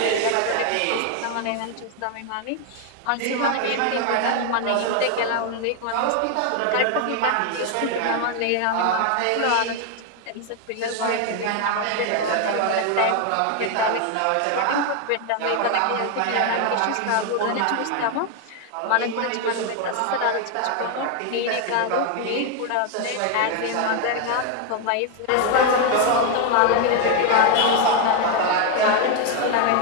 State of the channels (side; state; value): both; different; correlation 0.01